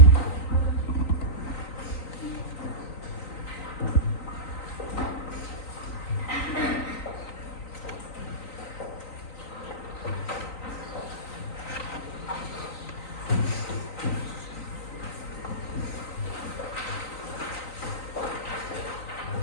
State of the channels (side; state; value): right; late; 3.9 ms